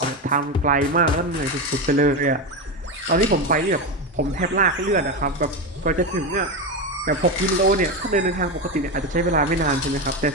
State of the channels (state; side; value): normal; both; correlation 0.15